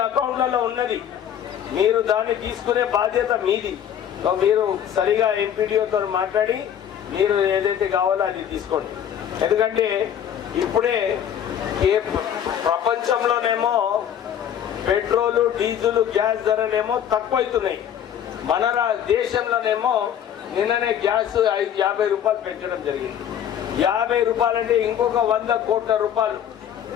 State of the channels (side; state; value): right; quieter; 9.6 dB